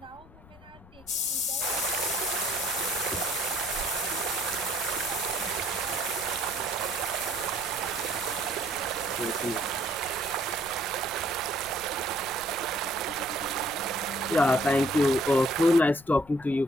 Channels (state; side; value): noise; left; rumble, 23 dB below the sound